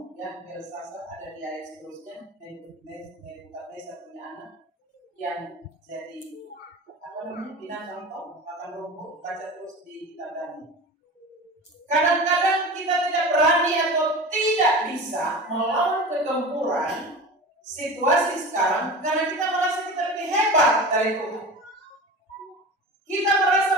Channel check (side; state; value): both; normal; correlation 0.32